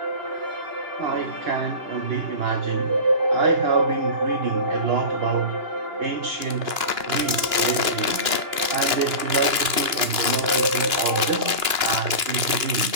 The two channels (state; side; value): late; left; 2.9 ms